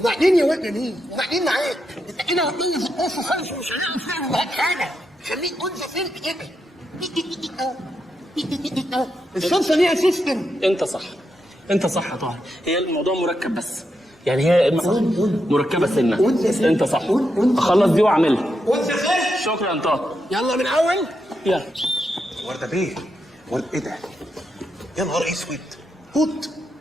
يا واد مين؟ وبعدين معاك؟ انت كده هتطلع في القصه خالص ومش هنعرف نعمل معاك حاجه. خليك انثى فين كده. الشمسه ليها سيستم. انت صح، انت صح يا طاهر. هي الموضوع مركب بس، يعني هي مركبه سنه. انت صح. اخلص دي واعملها. شكرا طاهر. يلا من اول. يلا. ورده بيه، ورده ايه ده؟ يا نهار اسود، هوت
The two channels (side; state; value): both; normal; correlation 0.84